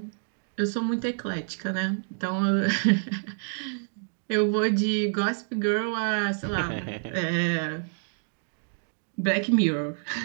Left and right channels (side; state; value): left; silent; digital silence